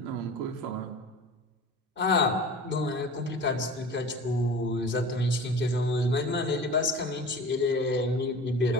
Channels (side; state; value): both; normal; correlation 0.38